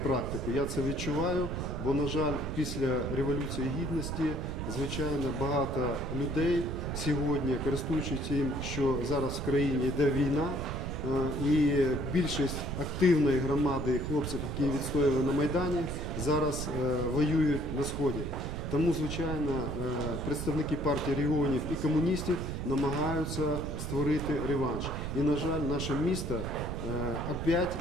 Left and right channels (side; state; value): right; noise; rumble, 4 dB below the sound